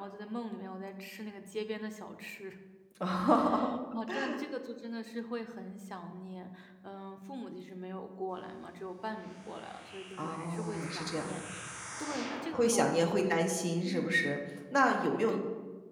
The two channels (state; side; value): identical; both; correlation 1.00